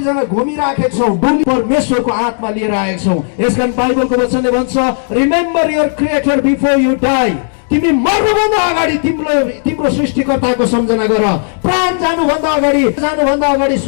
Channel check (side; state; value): right; silent; digital silence